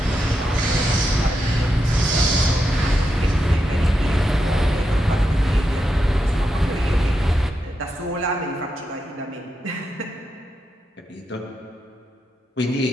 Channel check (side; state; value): both; normal; correlation 0.86